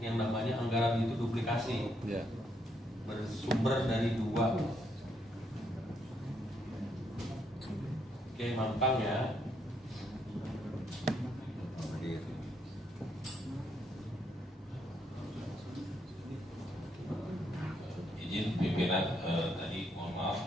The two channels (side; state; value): both; normal; correlation 0.75